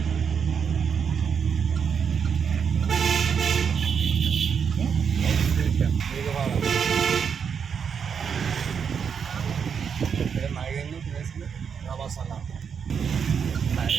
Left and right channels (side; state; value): left; quieter; 6.9 dB